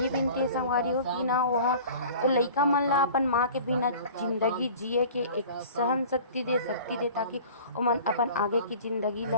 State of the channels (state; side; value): inverted; both; correlation -0.43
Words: विनती है संगवारी हो कि ना वह वो लइका मन ला अपन माँ के बिना जिंदगी जिए के एक सहन शक्ति दे ताकि वो मन अपन आगे की जिंदगी